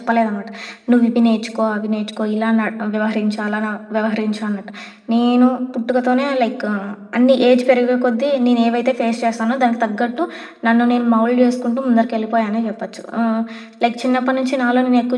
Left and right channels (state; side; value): identical; both; correlation 1.00